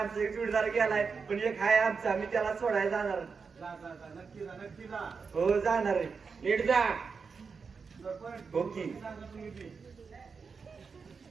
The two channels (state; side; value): quieter; left; 5.3 dB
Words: एक जोडीदार गेलाय पण एक हाय आमचा मी त्याला सोडायला जाणार जा जा जा नक्की जा नक्की जा. हो जाणार आहे नीट जा सरपंच ओके. सांगा तुम्ही बी.